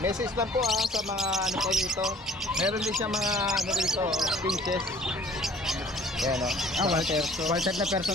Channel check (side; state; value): both; normal; correlation 0.53